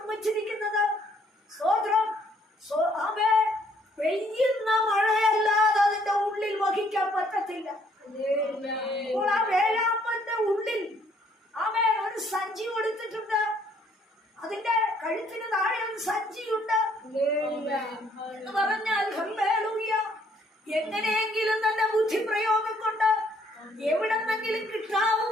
സ്തോത്രം ആമേ പെയ്യുന്ന മഴയല്ലാതെ അതിന്റെ ഉള്ളിൽ വഹിക്കാൻ പറ്റത്തില്ല. അപ്പോൾ ആ വേഴാമ്പലിന്റെ ഉള്ളിൽ ആമേ ഒരു സഞ്ചി കൊടുത്തിട്ടുണ്ട്. അതിന്റെ കഴുത്തിന് താഴെ ഒരു സഞ്ചിയുണ്ട് എന്ന് പറഞ്ഞാൽ ഹല്ലേലൂയ, എങ്ങനെയെങ്കിലും തന്റെ ബുദ്ധിപ്രയോഗം കൊണ്ട് എവിടെന്നെങ്കിലും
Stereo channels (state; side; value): normal; both; correlation 0.65